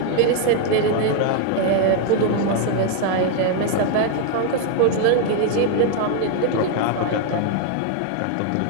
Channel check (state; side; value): different; both; correlation 0.00